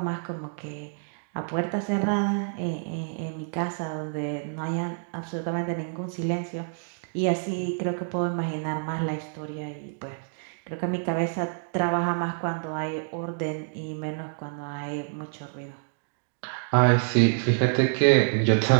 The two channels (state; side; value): silent; left; digital silence